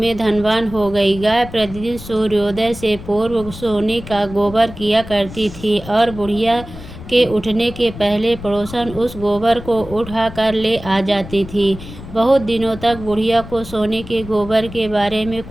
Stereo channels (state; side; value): noise; left; rumble, 14 dB below the sound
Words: धनवान हो गई। गाय प्रतिदिन सूर्योदय से पूर्व सोने का गोबर किया करती थी और बुढ़िया के उठने के पहले पड़ोसन उस गोबर को उठाकर ले आ जाती थी। बहुत दिनों तक बुढ़िया को सोने के गोबर के बारे में